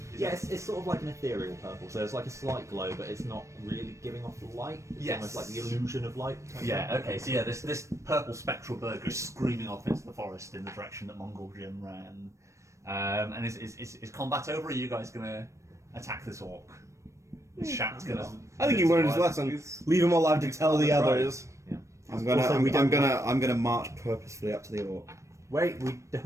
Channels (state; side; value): late; left; 0.15 ms